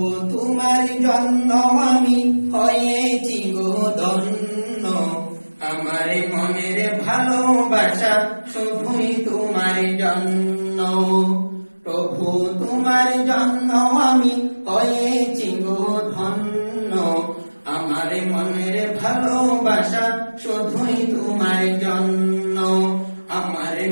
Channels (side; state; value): both; inverted; correlation -1.00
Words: তোমার জন্য আমি হয়েছি গো ধন্য, আমার মনের ভালোবাসা শুধুই তোমার জন্য। প্রভু তোমার জন্য আমি হয়েছি গো ধন্য, আমার মনের ভালোবাসা শুধুই তোমার জন্য, আমার